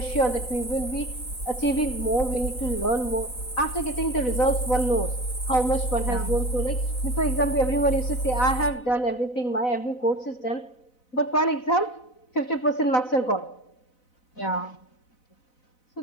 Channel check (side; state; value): right; late; 4.0 ms